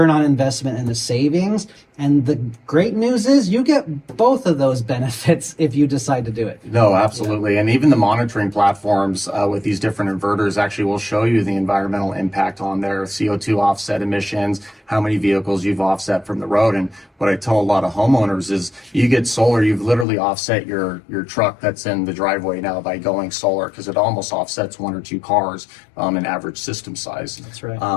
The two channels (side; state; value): right; drops out; at 20.1 s